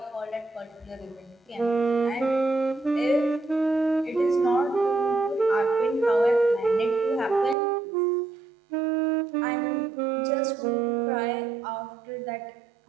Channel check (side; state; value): left; drops out; at 7.6 s